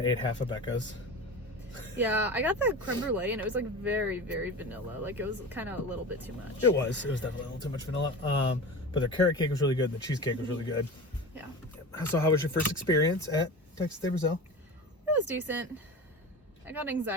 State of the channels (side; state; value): both; normal; correlation 0.31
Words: ate half of Becca's. Yeah, I got the creme brulee, and it was like very, very vanilla. Like it was kind of a little bit too much. It was definitely a little too much vanilla. But the carrot cake was really good. The cheesecake was really good. Yeah. So how was your first experience at Texas de Brazil? It was decent. I got